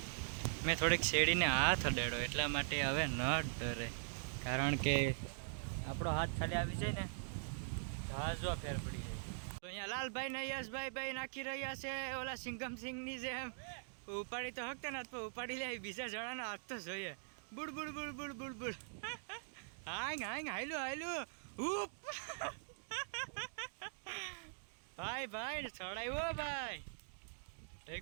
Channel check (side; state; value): left; silent; digital silence